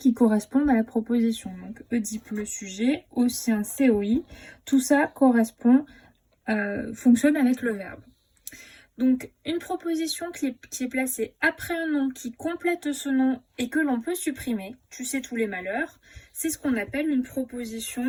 correspondent à la proposition. Donc Oedipe le sujet, au sien COI, tout ça correspond, fonctionne avec le verbe. Donc une proposition qui est placée après un nom qui complète ce nom et que l'on peut supprimer, tu sais tous les malheurs, c'est ce qu'on appelle une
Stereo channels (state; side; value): identical; both; correlation 1.00